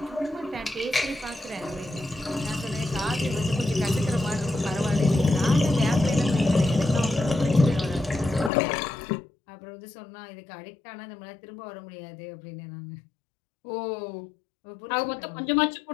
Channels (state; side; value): drops out; right; at 8.5 s